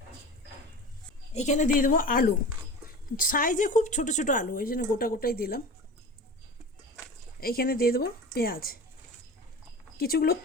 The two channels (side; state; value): both; normal; correlation 0.34